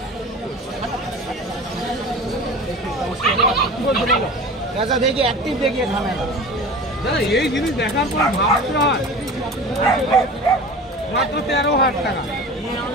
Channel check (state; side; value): normal; both; correlation 0.36